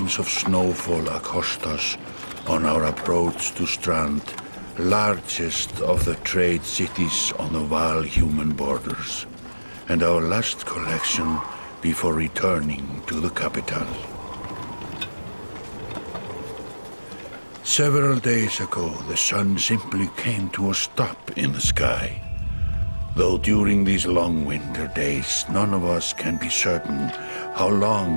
of snowfall accost us on our approach to Strand, largest of the trade cities on the Val-human borders, and our last collection before returning to the capital. Several days ago, the sun simply came to a stop in the sky. Though during these long winter days, none of us can be certain how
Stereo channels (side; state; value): both; inverted; correlation -1.00